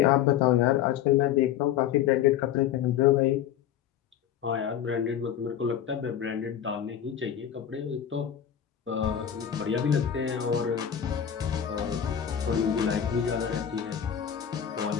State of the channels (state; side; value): quieter; right; 9.6 dB